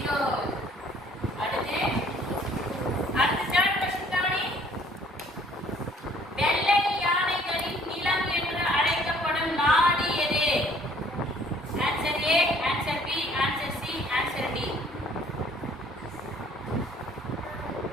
அடுத்து தேர்ட் क्वेश्चन கவனி. வெள்ளை யானைகளின் நிலம் என்று அழைக்கப்படும் நாடு எது? Answer A, answer B, answer C, answer D.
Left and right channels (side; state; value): both; normal; correlation 0.58